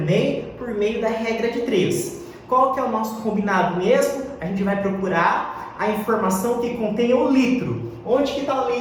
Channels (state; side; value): identical; both; correlation 1.00